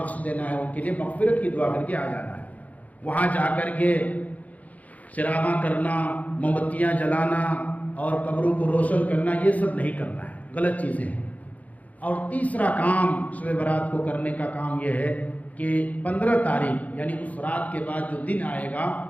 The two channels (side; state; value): right; late; 0.073 ms